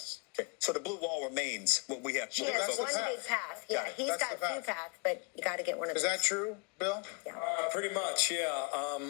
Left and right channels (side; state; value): right; quieter; 33.8 dB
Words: Okay. So the blue wall remains what we have. She has one path. big path. Yeah, he's That's got the two path. paths, but you got to get one of Is those. that true, Bill? Yeah. Pretty much, yeah.